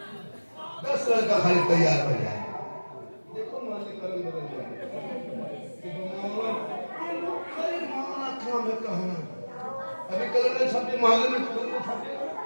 10 लड़का खाली तैयार हो जाए। देखो मोहल्ले का रंग बदल जाए। अभी कलर ने छापे मोहल्ले में कलर ने छापे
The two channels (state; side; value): inverted; both; correlation -1.00